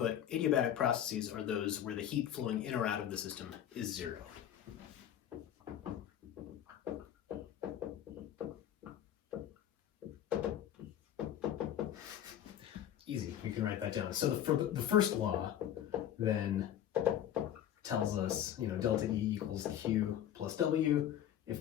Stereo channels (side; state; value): right; quieter; 10.7 dB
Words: adiabatic processes are those where the heat flowing in or out of the system is zero. Easy, we can write that down. So the first law then tells us, delta E equals Q plus W.